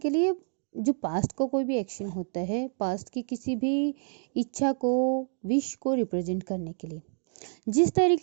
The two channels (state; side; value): silent; left; 59 dB below the other